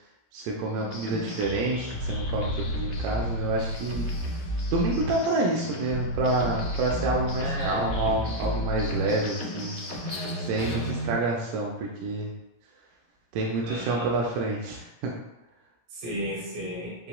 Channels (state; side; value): late; left; 17 ms